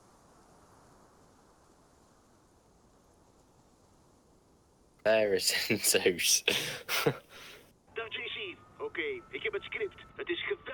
There is in Zeus. Dag JC. Oké, ik heb het script. Het is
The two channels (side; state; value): both; identical; correlation 1.00